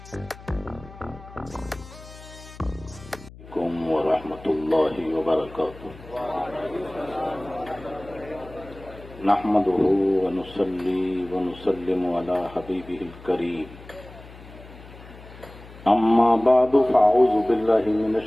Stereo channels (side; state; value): left; noise; hum, 18 dB below the sound